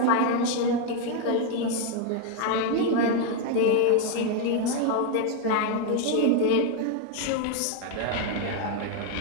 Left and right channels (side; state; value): both; different; correlation 0.01